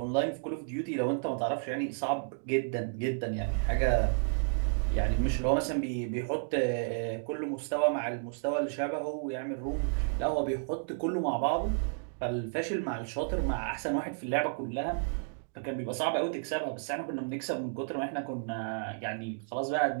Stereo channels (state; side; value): silent; left; digital silence